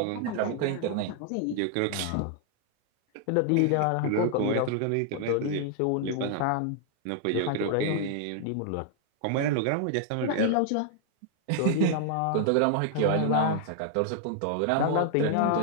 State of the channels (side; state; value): both; different; correlation 0.00